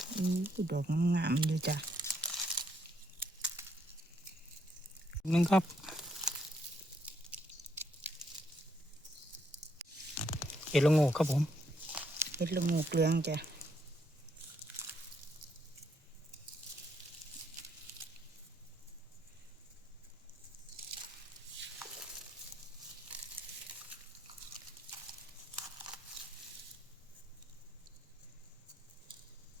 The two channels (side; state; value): both; normal; correlation 0.73